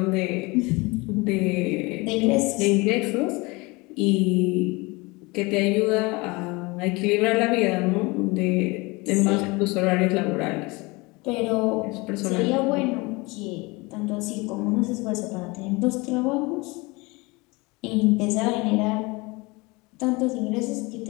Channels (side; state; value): right; quieter; 25.0 dB